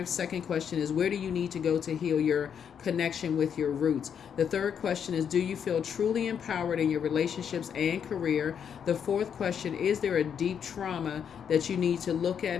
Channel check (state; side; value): quieter; right; 7.9 dB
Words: Second question is, where do you need to go to heal your connection with your roots? The third question is, do you feel truly empowered in your relationships and career? The fourth question, is there a deep trauma that you need to look at,